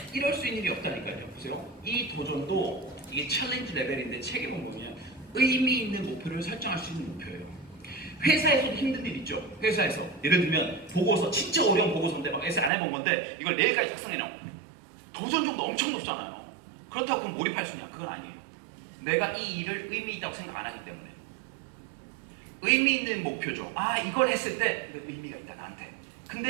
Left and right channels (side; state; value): left; drops out; at 12.7 s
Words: 이럴 수 있는 일이 없다니까요. 보세요. 이 도전도 이게 챌린지 레벨인데 책에 보면 의미 있는 목표를 설정할 수 있는 목표예요. 회사에서도 힘든 일 있죠. 회사에서 예를 들면 보고서 진짜 어려운 보고서인데 막 에세 안 해본 건데 이걸 내일까지 작성해놔. 도전 정도 엄청 높잖아요. 그렇다고 그럼 몰입할 수 있냐? 그건 아니에요. 내가 이 일을 의미 있다고 생각 안 하기 때문에. 의미 있는 목표죠. 이걸 했을 때 의미가 있다 나한테.